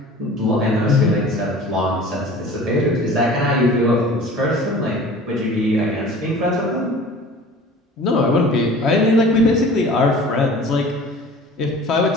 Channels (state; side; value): normal; both; correlation 0.43